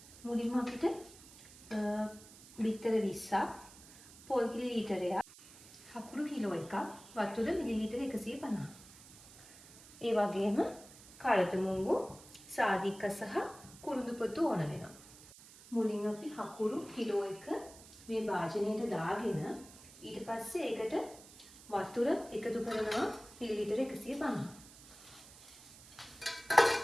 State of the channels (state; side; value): noise; right; hiss, 20 dB below the sound